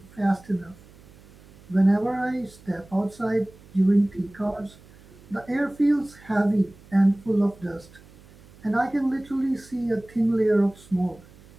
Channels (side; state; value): right; noise; hum, 24 dB below the sound